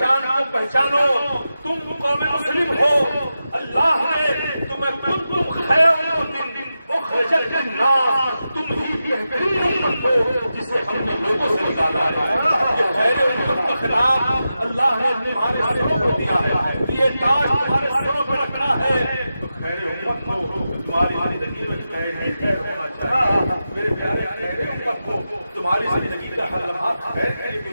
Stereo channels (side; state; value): both; inverted; correlation -0.91